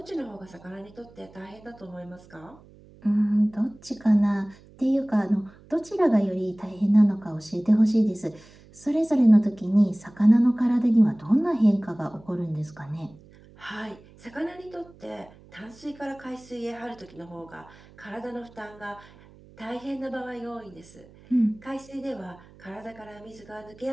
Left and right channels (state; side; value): noise; right; hum, 24 dB below the sound